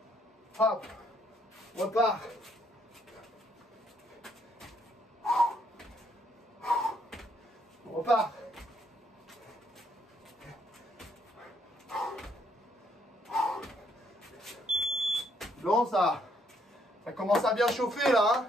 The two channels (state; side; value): normal; both; correlation 0.70